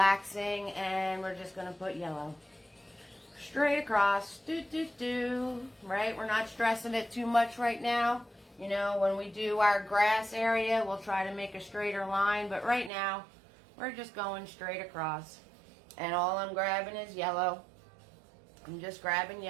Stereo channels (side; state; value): left; drops out; at 12.9 s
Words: And we're just going to put yellow straight across. Right? We're not stressing it too much right now. You know, when we do our grass area, we'll try to make a straighter line. But right now, we're just going straight across. And all I'm grabbing is yellow. I'm just grabbing